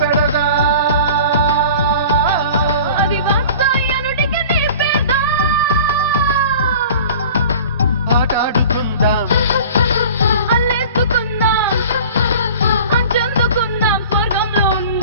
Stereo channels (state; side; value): inverted; both; correlation -0.42